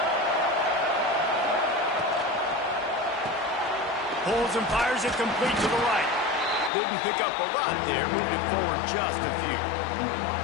Pulls and fires it complete to the right. Didn't pick up a lot there, moved it forward just a few.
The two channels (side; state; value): right; drops out; at 6.7 s